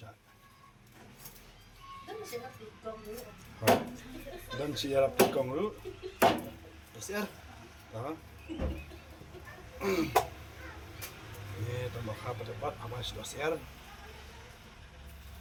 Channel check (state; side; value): identical; both; correlation 1.00